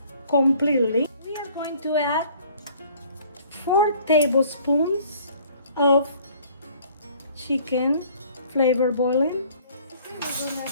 completely. We are going to add 4 tablespoons of chicken flavor bouillon. We're going to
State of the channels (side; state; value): both; inverted; correlation -0.56